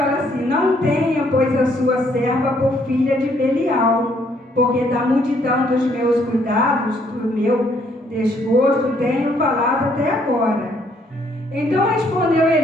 assim, não tenha, pois, a sua serva por filha de Belial, porque da multidão dos meus cuidados, do meu desgosto, tenho falado até agora. Então respondeu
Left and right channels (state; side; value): normal; both; correlation 0.67